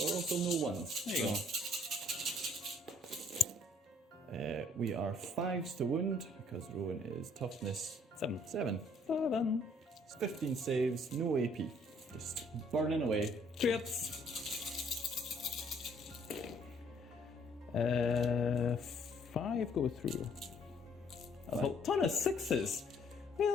there were also no 1s. There you go. We are 5s to wound, because Rowan is toughness 7. 7. 7. It's 15 saves, no AP. Just burning away. Trips. 5 go through. A ton of 6s. What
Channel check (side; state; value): both; normal; correlation 0.63